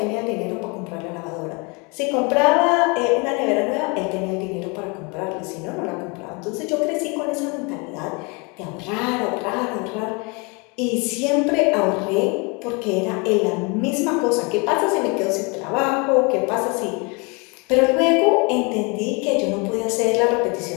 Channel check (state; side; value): quieter; right; 30.1 dB